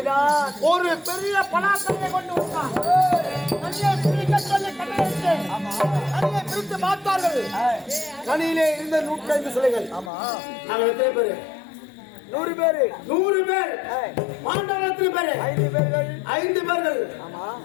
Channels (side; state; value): right; drops out; at 10.1 s